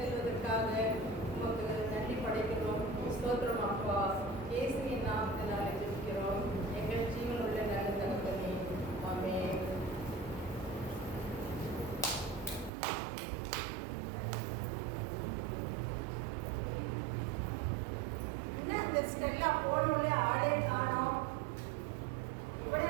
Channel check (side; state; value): left; drops out; at 12.7 s